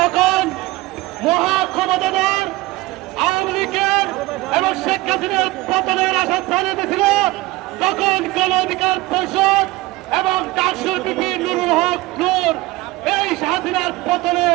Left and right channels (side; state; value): left; quieter; 20.0 dB